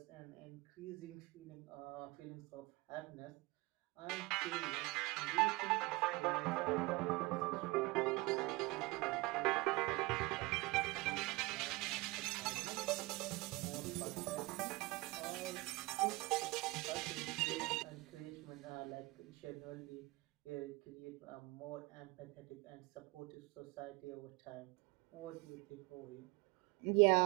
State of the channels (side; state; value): left; quieter; 23.5 dB